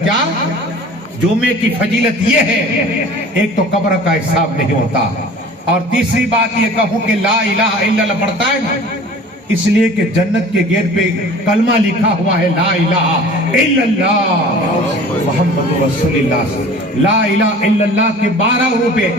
کیا جمعے کی فضیلت یہ ہے، ایک تو قبر کا حساب نہیں ہوتا، اور تیسری بات یہ کہوں کہ لا الہ الا اللہ پڑھتا ہے نا، اس لیے کہ جنت کے گیٹ پہ کلمہ لکھا ہوا ہے لا الہ الا اللہ محمد رسول اللہ. لا الہ الا اللہ کے 12 روپے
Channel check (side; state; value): both; normal; correlation 0.44